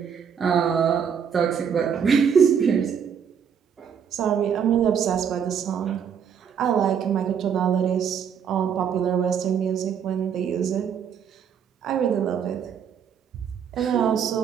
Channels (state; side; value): quieter; left; 7.6 dB